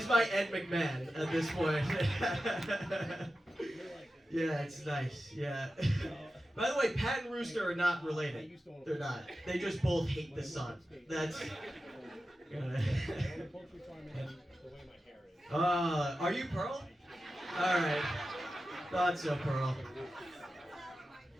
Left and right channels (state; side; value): normal; both; correlation 0.93